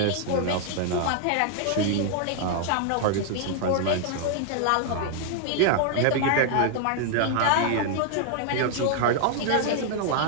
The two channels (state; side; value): different; both; correlation 0.00